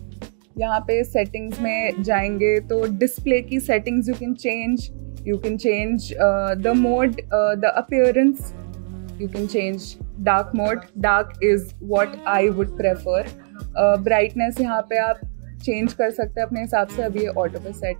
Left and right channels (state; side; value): silent; left; digital silence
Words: यहाँ पे सेटिंग्स में जाएंगे तो डिस्प्ले की settings you can change the mode, the appearance. You can change dark mode. Dark is what I would prefer. Brightness यहाँ पे आप change कर सकते हैं अपने हिसाब से. अभी ये auto पे